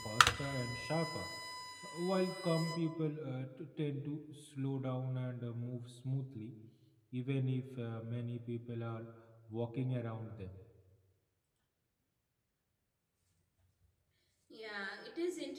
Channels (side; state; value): both; identical; correlation 1.00